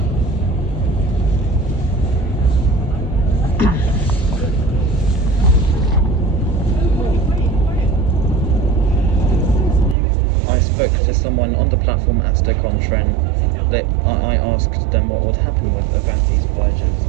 I spoke to someone on the platform at Stoke-on-Trent. I asked them what would happen with Avanti's Voyages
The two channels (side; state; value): left; drops out; at 10.0 s